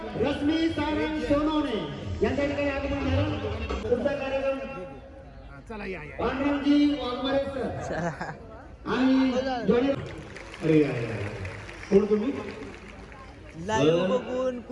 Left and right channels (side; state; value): both; identical; correlation 1.00